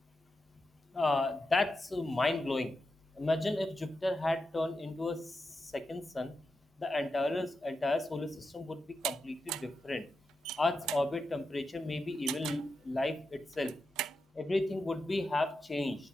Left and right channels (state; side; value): normal; both; correlation 0.88